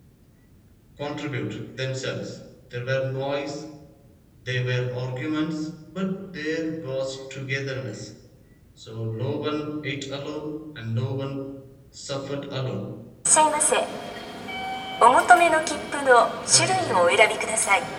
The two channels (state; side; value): identical; both; correlation 1.00